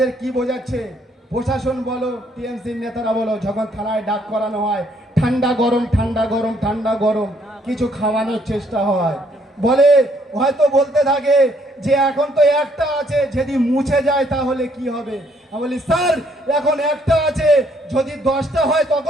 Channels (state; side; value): normal; both; correlation 0.68